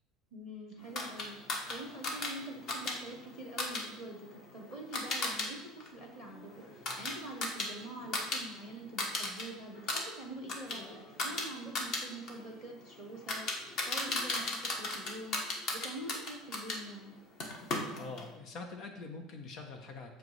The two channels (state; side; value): normal; both; correlation 0.39